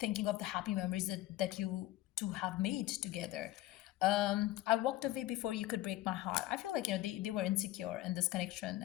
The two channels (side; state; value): right; quieter; 16.0 dB